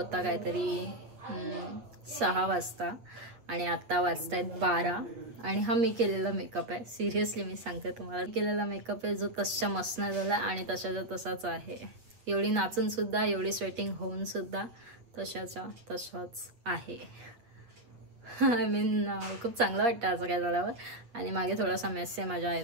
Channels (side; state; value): left; late; 8.5 ms